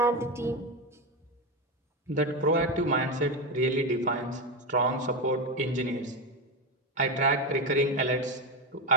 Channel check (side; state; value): both; normal; correlation 0.14